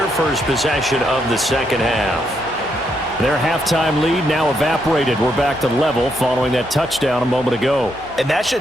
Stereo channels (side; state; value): both; normal; correlation 0.78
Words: first possession of the second half. Their halftime lead now evaporated. We're back to level following that touchdown a moment ago. And that